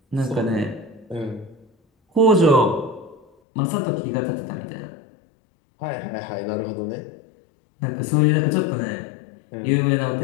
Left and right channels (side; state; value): right; drops out; at 3.2 s